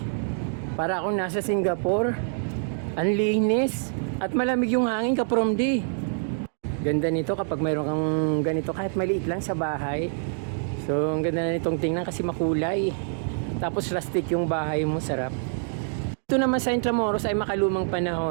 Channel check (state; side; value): silent; left; digital silence